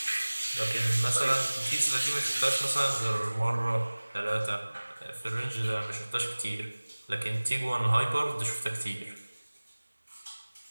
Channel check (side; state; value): both; inverted; correlation -1.00